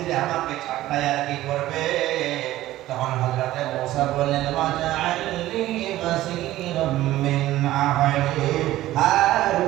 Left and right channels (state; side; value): quieter; left; 15.3 dB